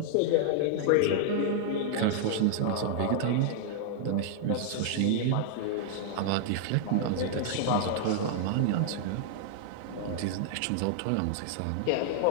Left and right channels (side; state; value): both; different; correlation -0.01